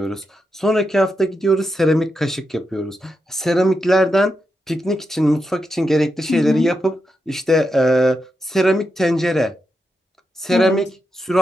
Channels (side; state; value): both; normal; correlation 0.86